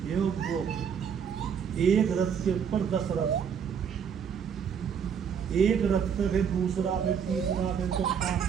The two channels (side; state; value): left; quieter; 7.3 dB